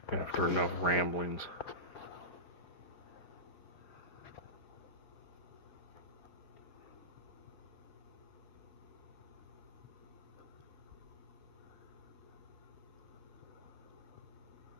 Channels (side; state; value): right; late; 4.9 ms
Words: After enough ramblings.